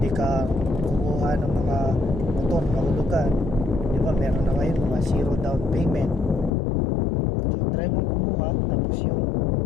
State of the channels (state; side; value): drops out; right; at 6.5 s